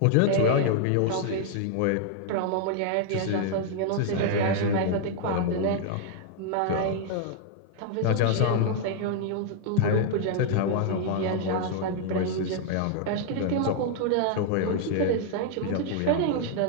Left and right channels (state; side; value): different; both; correlation 0.00